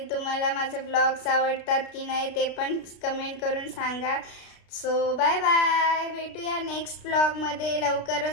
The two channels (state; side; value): late; right; 33 ms